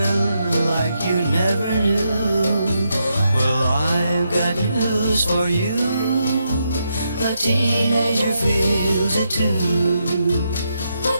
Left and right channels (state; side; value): inverted; both; correlation -0.81